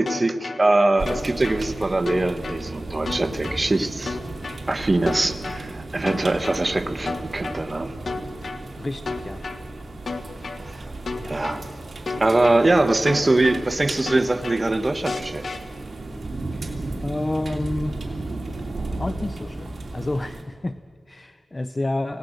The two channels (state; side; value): normal; both; correlation 0.97